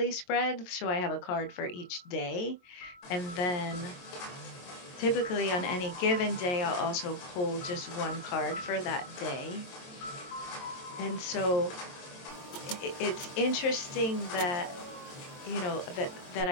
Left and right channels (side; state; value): right; late; 22 ms